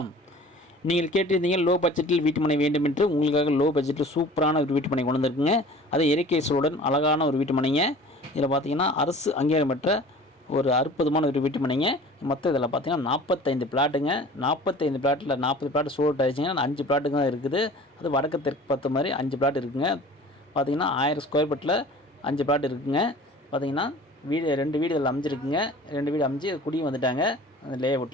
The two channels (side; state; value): both; normal; correlation 0.44